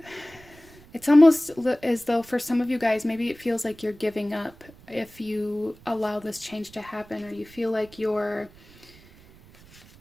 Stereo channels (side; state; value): right; noise; rumble, 24 dB below the sound